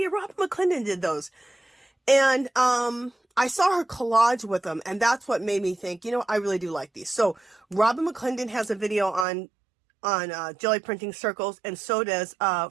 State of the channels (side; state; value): left; drops out; at 9.2 s